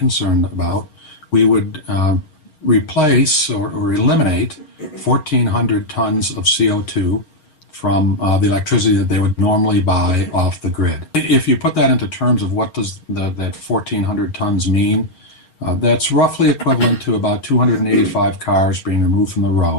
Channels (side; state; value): right; late; 6.4 ms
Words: about, we would replace or eliminate 1,400 tons of CO2 from the electricity that they would normally buy off the grid. If you put that into terms of what does that 1,400 tons mean, that's roughly equivalent to about 285 cars being removed from the